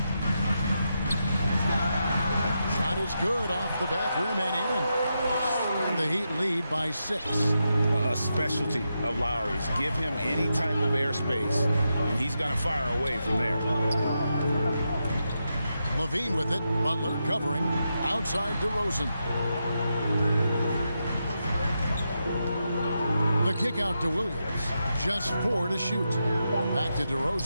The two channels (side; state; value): both; inverted; correlation -0.86